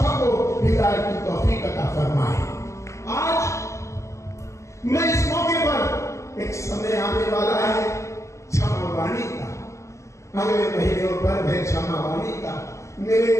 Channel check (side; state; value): right; late; 0.14 ms